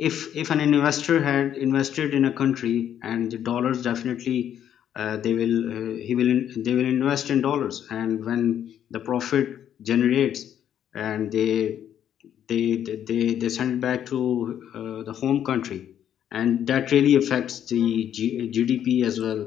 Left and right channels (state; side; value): quieter; right; 10.0 dB